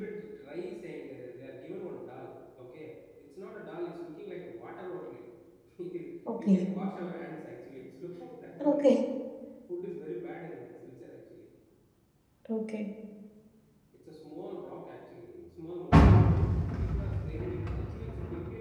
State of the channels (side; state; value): both; identical; correlation 1.00